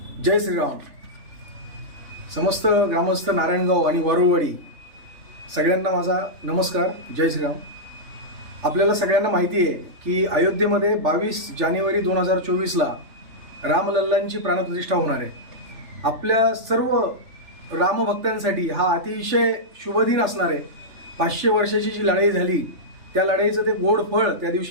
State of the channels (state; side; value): late; left; 3.4 ms